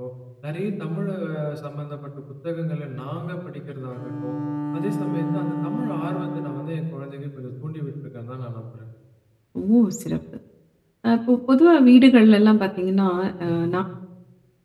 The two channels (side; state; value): both; identical; correlation 1.00